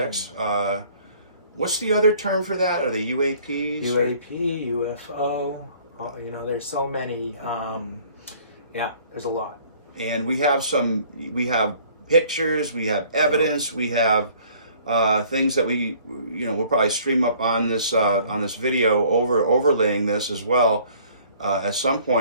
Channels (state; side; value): inverted; both; correlation -0.56